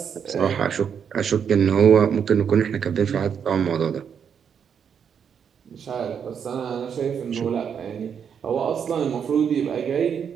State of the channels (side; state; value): left; quieter; 7.5 dB